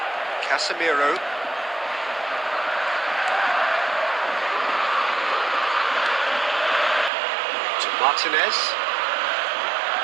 Casemiro. To Martinez.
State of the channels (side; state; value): left; drops out; at 7.1 s